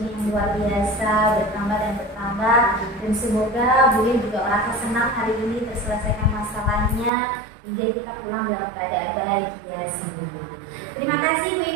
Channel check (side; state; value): left; drops out; at 7.1 s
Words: yang luar biasa, bertambah dan bertambah. Dan semoga Bu Ina juga merasa senang hari ini terselesaikan masalahnya hingga kita pulang dalam keadaan bahagia semua. Terima kasih Bu